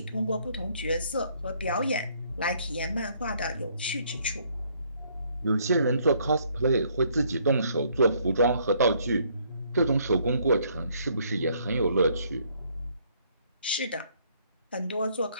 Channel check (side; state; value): both; inverted; correlation -0.66